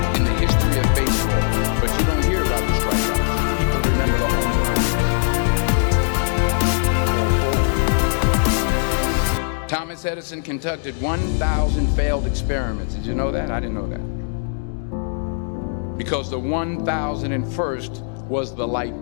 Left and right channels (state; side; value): silent; right; digital silence